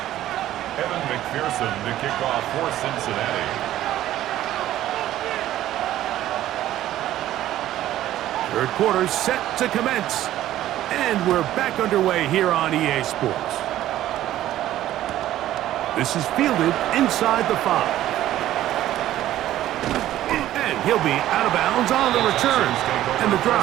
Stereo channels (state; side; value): quieter; left; 13.5 dB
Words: Evan McPherson to kick off for Cincinnati. Third quarter set to commence. And we're back underway here on EA Sports. This is fielded inside the 5. And he'll be out of bounds on the return. And the